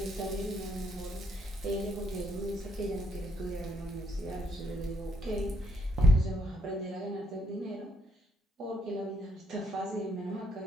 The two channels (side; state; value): both; normal; correlation 0.71